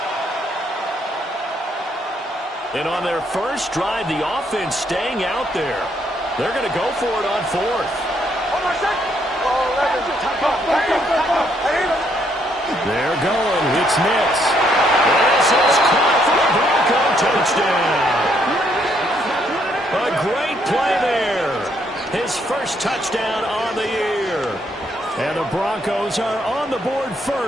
And on their first drive, the offense staying out there. They're going to go for it on 4th. They're going. It's Nix. This is caught for the Bronco touchdown. A great play there. His first touchdown on the year. And the Broncos are on the board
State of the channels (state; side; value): normal; both; correlation 0.72